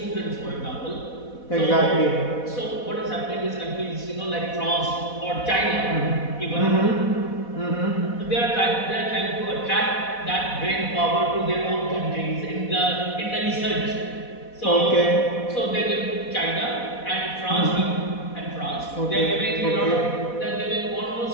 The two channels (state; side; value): late; right; 4.1 ms